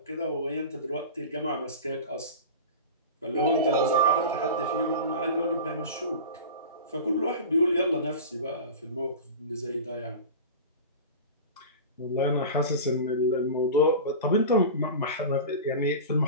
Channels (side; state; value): both; inverted; correlation -0.31